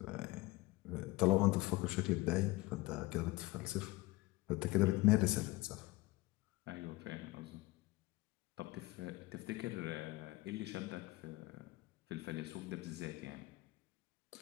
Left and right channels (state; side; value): quieter; right; 20.3 dB